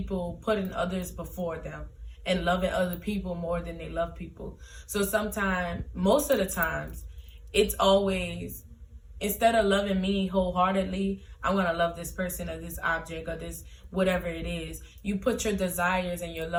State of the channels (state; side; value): identical; both; correlation 1.00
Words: putting others before them and loving other people more than they love people. So most of the times, it's always, instead of loving me wholeheartedly, I'm going to love this person or this object or this whatever it is. You put your desires and your